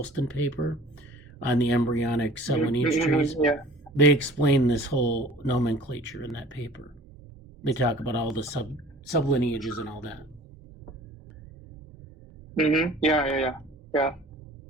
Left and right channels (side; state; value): both; normal; correlation 0.47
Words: paper on the embryonic sublineage trees, they explain this whole nomenclature in that paper. They talk about all the sublineages and all that. Yeah.